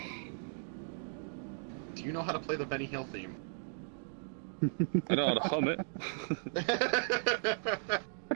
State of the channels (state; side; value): silent; left; digital silence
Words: Do you know how to play the Benny Hill theme? I know how to hum it.